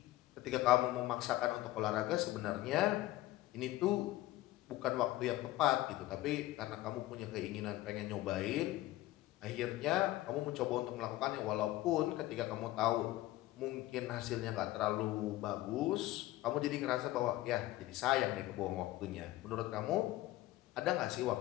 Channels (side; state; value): right; quieter; 16.6 dB